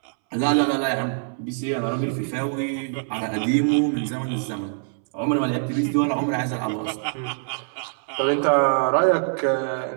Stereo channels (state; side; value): silent; left; 63 dB below the other